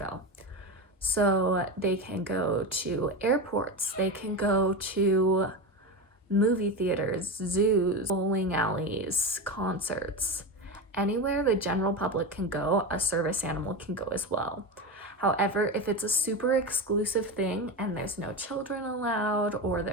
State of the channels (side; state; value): both; normal; correlation 0.20